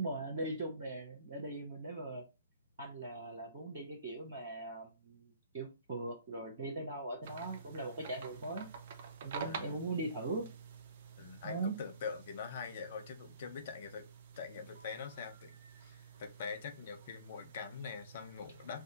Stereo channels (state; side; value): inverted; both; correlation -0.53